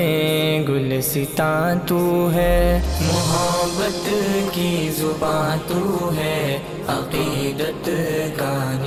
گلستاں تو ہے۔ محبت کی زباں تو ہے، عقیدت کا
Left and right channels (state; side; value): identical; both; correlation 1.00